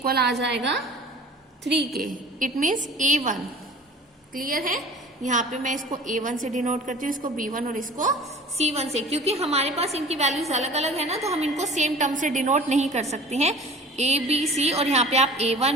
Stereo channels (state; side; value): normal; both; correlation 0.43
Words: आ जाएगा 3 के, इट मीन्स a1, क्लियर है। यहाँ पे मैं इसको a1 से डिनोट करती हूँ, इसको b1 और इसको c1 से, क्योंकि हमारे पास इनकी वैल्यूज अलग अलग है ना, तो हम इनको सेम टर्म से डिनोट नहीं कर सकते हैं। a b c और यहाँ पे आप